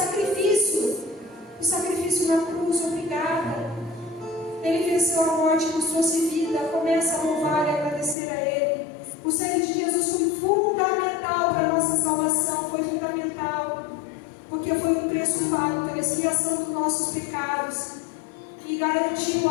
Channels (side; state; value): right; drops out; at 8.2 s